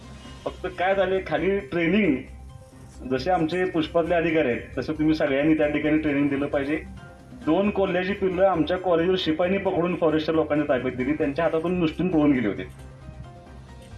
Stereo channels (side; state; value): both; identical; correlation 1.00